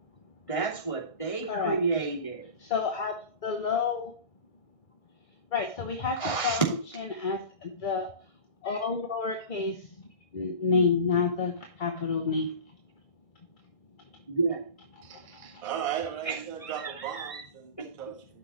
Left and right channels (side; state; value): right; late; 1.5 ms